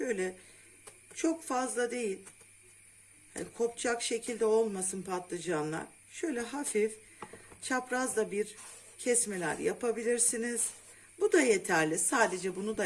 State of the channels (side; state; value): both; identical; correlation 1.00